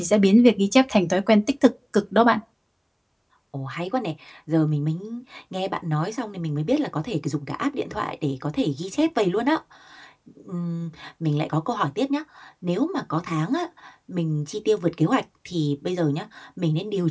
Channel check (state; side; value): identical; both; correlation 1.00